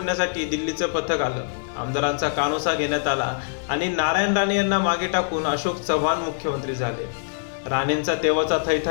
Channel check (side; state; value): right; silent; digital silence